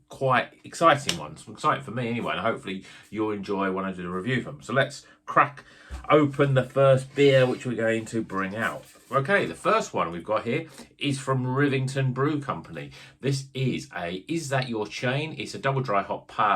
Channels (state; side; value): identical; both; correlation 1.00